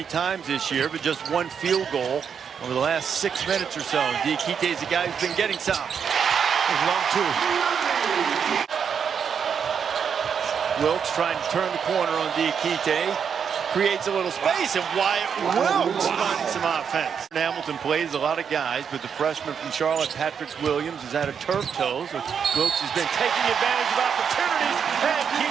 times this year, but just one field goal over the last 6 minutes or so. Diakite is a guy who's been getting some. There's long 2. Wilkes trying to turn the corner on Diakite. Creates a little space, and Wyatt Wilkes finding some offense. Hamilton plays a lot of guys, but the freshman from Charlotte, Patrick Williams, has had a turf toe, so Wilkes has been taking advantage of opportunities, and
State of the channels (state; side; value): quieter; left; 7.1 dB